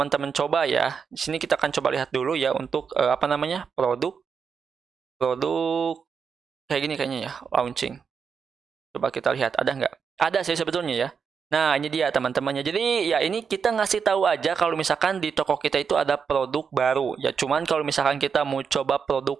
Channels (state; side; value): quieter; left; 6.3 dB